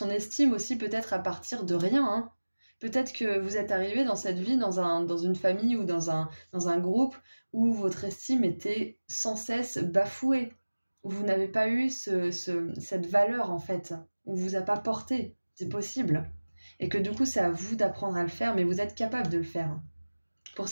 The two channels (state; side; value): inverted; both; correlation -1.00